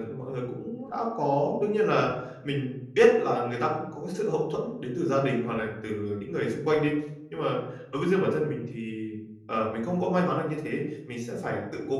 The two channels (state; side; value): identical; both; correlation 1.00